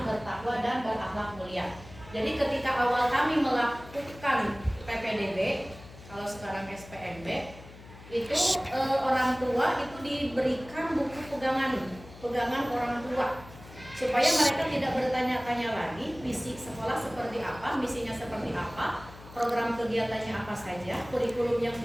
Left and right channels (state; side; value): noise; left; hum, 18 dB below the sound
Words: bertakwa, dan berakhlak mulia. Jadi ketika awal kami melakukan PPDB, kalau sekarang SPMB, itu orang tua itu diberikan buku pegangan orang tua, supaya mereka tidak bertanya-tanya lagi visi sekolah seperti apa, misinya seperti apa, program kegiatannya apa saja, kurikulum yang